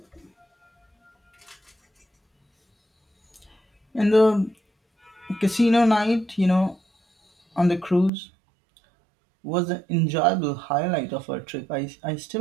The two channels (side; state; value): left; drops out; at 8.1 s